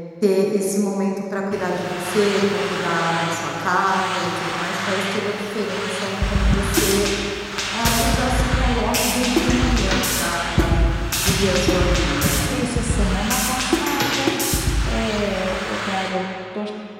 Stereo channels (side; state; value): both; identical; correlation 1.00